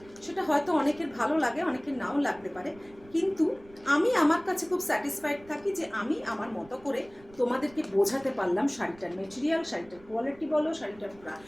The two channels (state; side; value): noise; right; rumble, 24 dB below the sound